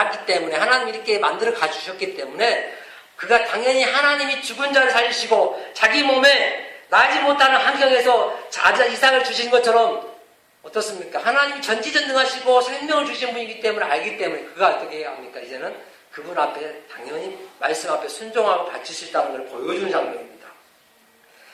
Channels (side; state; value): both; identical; correlation 1.00